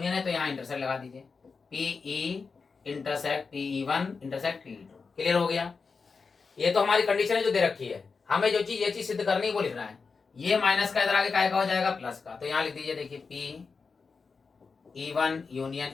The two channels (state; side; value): quieter; right; 4.9 dB